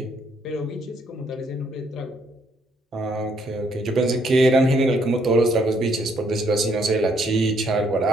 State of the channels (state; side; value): normal; both; correlation 0.70